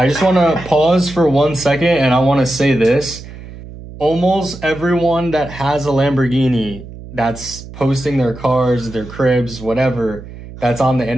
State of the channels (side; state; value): right; noise; hum, 15 dB below the sound